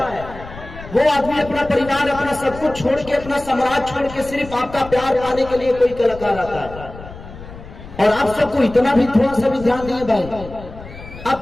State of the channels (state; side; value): noise; left; rumble, 15 dB below the sound